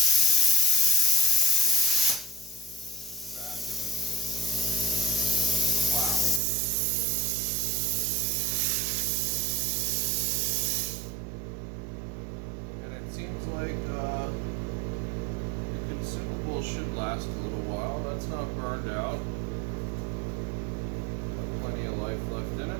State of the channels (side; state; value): left; drops out; at 6.4 s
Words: Seems like the consumable should last a little while. That's not burned out. Got plenty of life left in it.